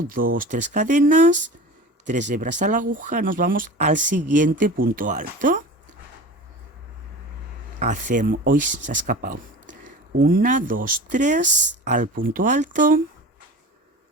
2, 3 cadenas, 3 hebras a la aguja, nos vamos al siguiente punto alto. Hacemos, hoy se ha escapado. 1, 2, 3 al punto alto.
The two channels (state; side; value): normal; both; correlation 0.35